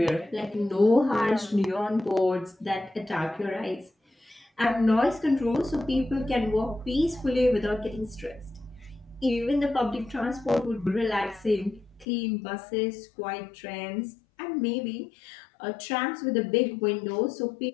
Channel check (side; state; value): right; drops out; at 12.1 s